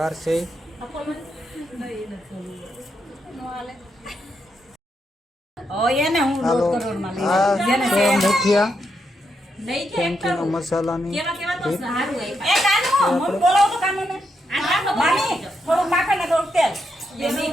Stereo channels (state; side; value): normal; both; correlation 0.82